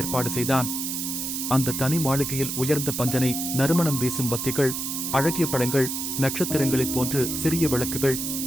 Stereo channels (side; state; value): right; noise; hiss, 3 dB below the sound